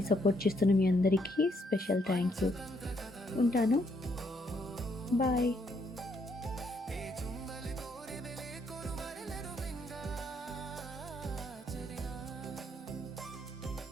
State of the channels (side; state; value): both; normal; correlation 0.72